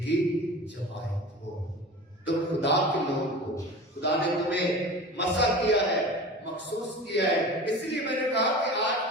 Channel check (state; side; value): normal; both; correlation 0.35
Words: کی جماعت ہو، تم خدا کے لوگ ہو، خدا نے تمہیں مسا کیا ہے، مخصوص کیا ہے۔ اس لیے میں نے کہا کہ آج